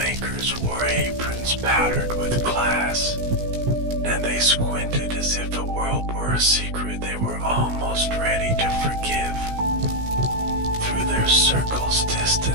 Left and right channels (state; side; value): late; left; 16 ms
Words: wore aprons powdered with glass, and they squinted as if the world were a secret they were almost ready to forgive. Through their circles,